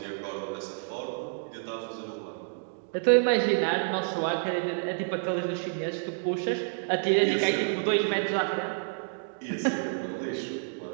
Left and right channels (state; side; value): silent; left; digital silence